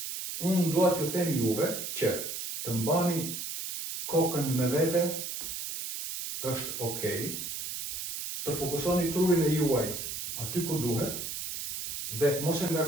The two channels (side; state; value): right; noise; hiss, 6 dB below the sound